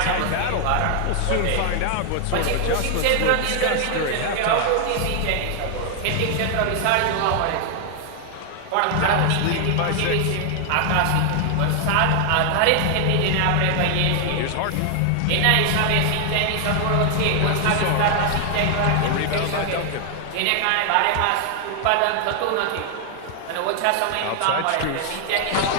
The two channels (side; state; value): both; different; correlation 0.00